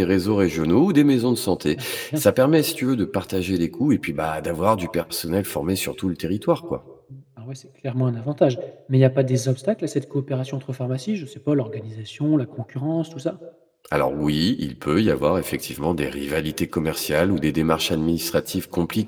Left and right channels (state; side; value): identical; both; correlation 1.00